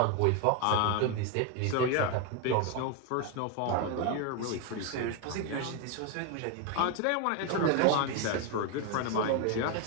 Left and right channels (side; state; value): both; different; correlation 0.02